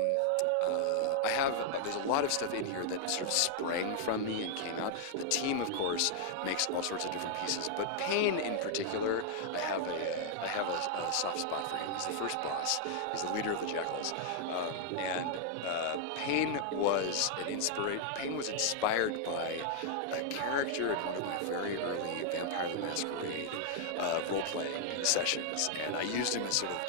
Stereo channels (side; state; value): both; different; correlation -0.01